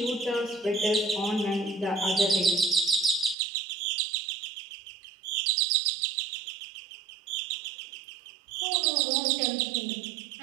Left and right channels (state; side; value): drops out; left; at 3.4 s